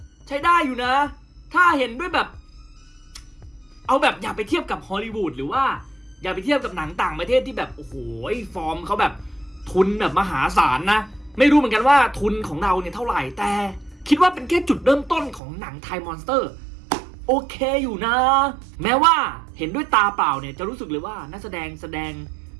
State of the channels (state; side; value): drops out; left; at 15.4 s